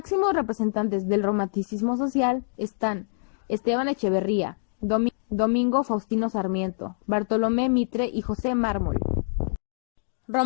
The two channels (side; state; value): right; silent; digital silence